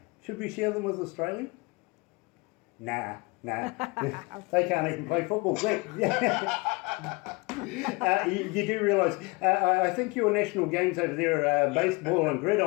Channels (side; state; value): right; quieter; 27.1 dB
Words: should we share them with Australia? Nah. They can't even play football. You do realise, I think your national games over there are baseball and